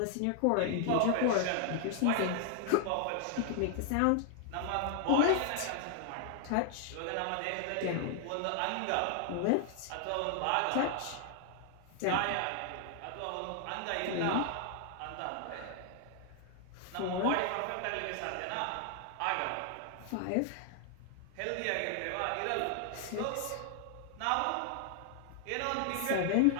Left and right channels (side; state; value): both; different; correlation 0.00